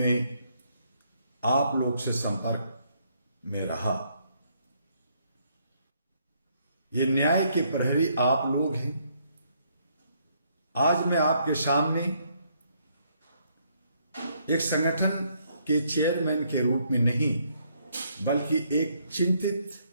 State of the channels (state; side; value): inverted; both; correlation -0.71